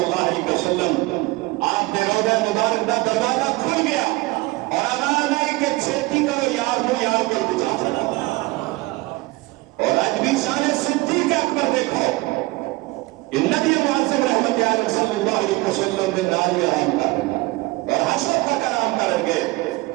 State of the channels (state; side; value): quieter; left; 21.6 dB